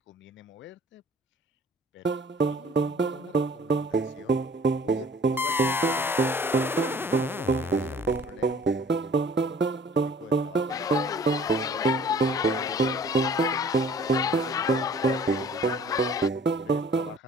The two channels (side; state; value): both; normal; correlation 0.52